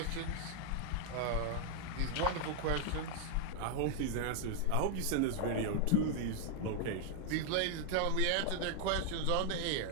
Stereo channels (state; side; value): different; both; correlation 0.00